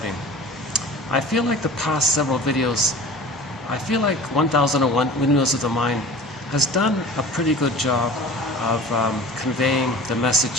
I feel like the past several videos, I feel like 1001 Windmills of the Mind has done a pretty good job of conveying the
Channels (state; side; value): normal; both; correlation 0.41